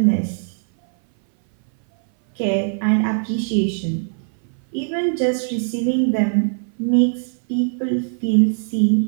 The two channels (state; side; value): silent; left; 59 dB below the other